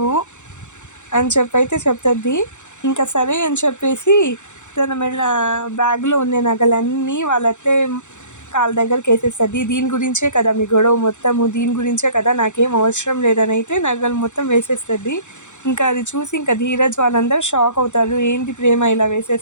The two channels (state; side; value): late; right; 0.84 ms